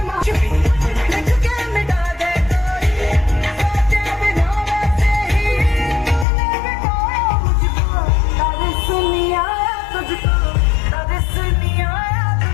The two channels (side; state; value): right; drops out; at 6.2 s